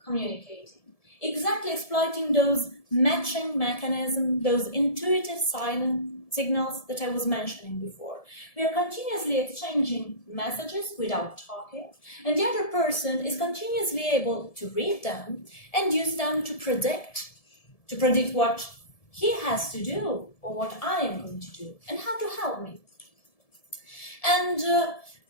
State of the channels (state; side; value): late; right; 1.7 ms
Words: communicating, exactly exploiting those matching mechanisms, those intuitive signals that I was mentioning before. We are continuously exchanging messages without talking, and the other person is continuously able to read them and use them to predict what he has to do or what I am going to do and how to help me. And